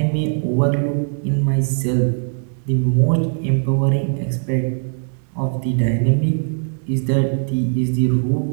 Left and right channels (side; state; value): left; silent; digital silence